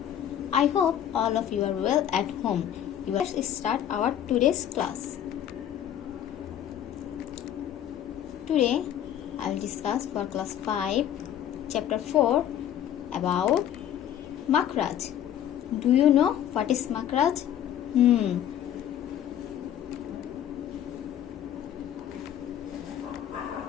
I hope all of you are well at home. Let's start our today's class. Today I will discuss for class 5, chapter 4 about Makhraj. Do you know what is Makhraj?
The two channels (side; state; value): right; quieter; 10.5 dB